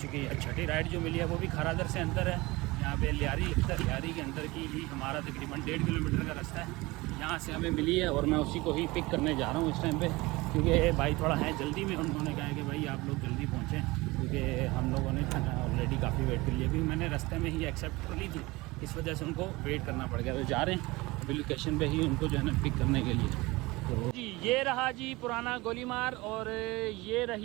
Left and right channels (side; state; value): left; quieter; 21.9 dB